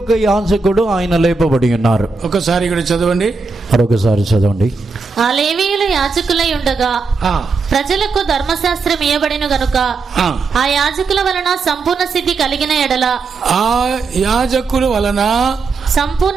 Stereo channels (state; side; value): quieter; left; 4.3 dB